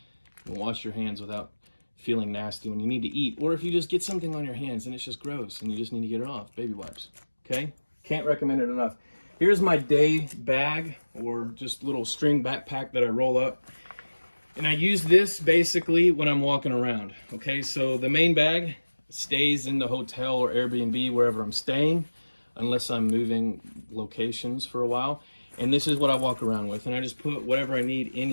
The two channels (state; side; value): inverted; both; correlation -1.00